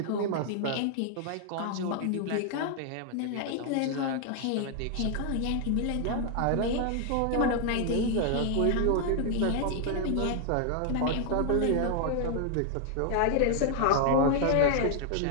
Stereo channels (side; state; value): both; different; correlation 0.00